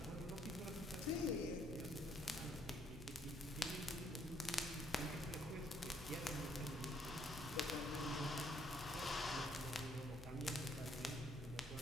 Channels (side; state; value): both; normal; correlation 0.68